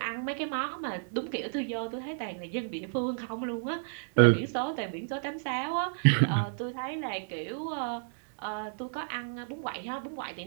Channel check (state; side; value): silent; left; digital silence